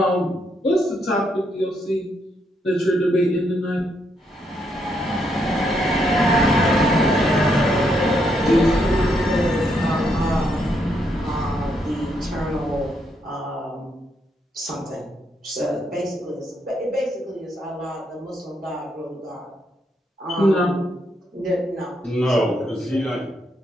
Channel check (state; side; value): normal; both; correlation 0.77